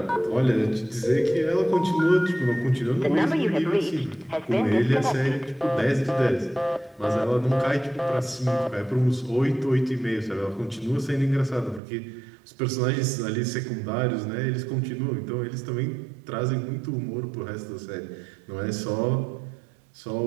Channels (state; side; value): drops out; left; at 11.8 s